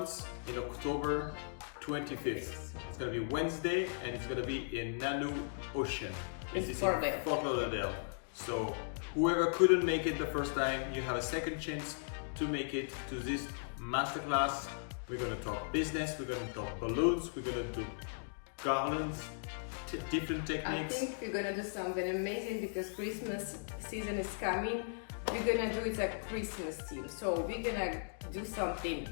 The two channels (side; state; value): right; silent; digital silence